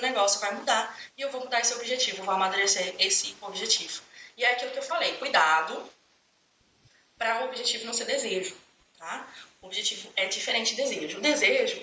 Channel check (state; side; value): identical; both; correlation 1.00